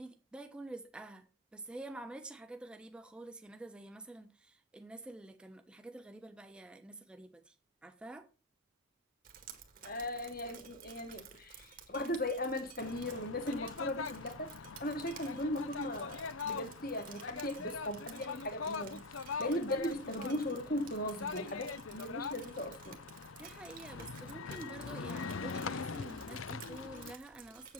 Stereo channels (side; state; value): both; normal; correlation 0.13